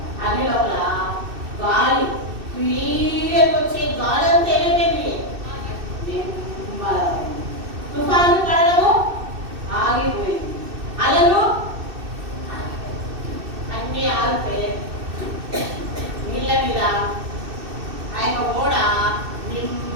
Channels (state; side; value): late; left; 2.6 ms